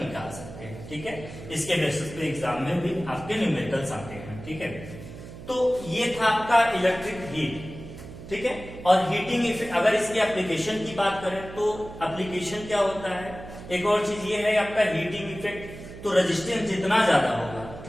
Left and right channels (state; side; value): noise; right; hum, 14 dB below the sound